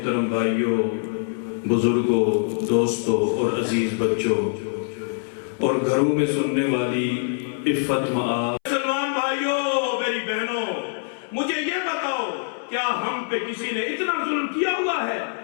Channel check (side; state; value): right; silent; 62 dB below the other